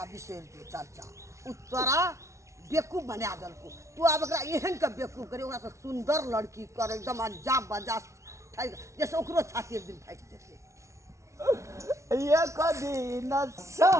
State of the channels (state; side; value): late; left; 0.14 ms